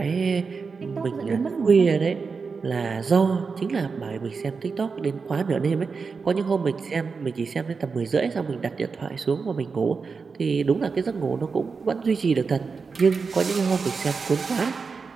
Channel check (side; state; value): left; quieter; 5.0 dB